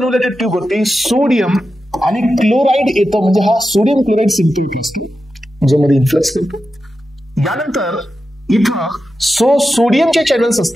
ट्यूब वरती सोडियम आणि क्लोराइड येतं, म्हणजे हा सोडियम क्लोराइड सिम्पल असतो ज्यामध्ये इन्फ्लक्स करतो. यानंतर इथं सोडियमचे चॅनल्स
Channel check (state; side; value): normal; both; correlation 0.90